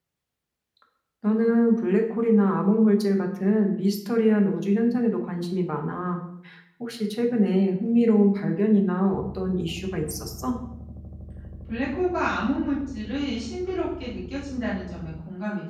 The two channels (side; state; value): both; identical; correlation 1.00